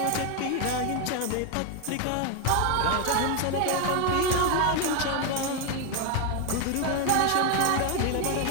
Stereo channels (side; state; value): both; different; correlation 0.01